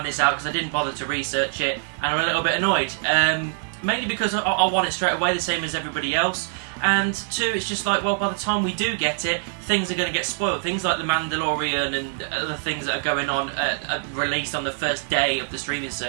this out because I didn't bother to research it, and I'm a little bit annoyed. Mainly because I want it straight away, the same as everybody else, and two, it's just like, well, by the time we do get it, things are going to get spoiled. Things like The Mandalorian and other things that are going on, released on the first day of the streaming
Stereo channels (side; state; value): left; silent; digital silence